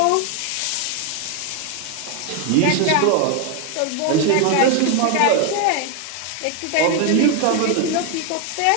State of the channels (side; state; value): both; different; correlation 0.01